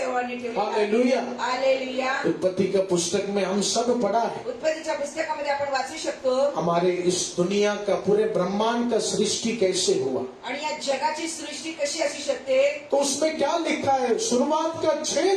ठेवला. हालेलुया। हालेलुया. उत्पत्ति का पुस्तक में हम सब पढ़ा है। उत्पत्तीच्या पुस्तकामध्ये आपण वाचू शकतो. हमारे इस दुनिया का, पूरे ब्रह्मांड का सृष्टि कैसे हुआ, आणि या जगाची सृष्टी कशी असू शकते. तो उसमें क्या लिखा है? शुरुआत का 6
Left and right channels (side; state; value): both; identical; correlation 1.00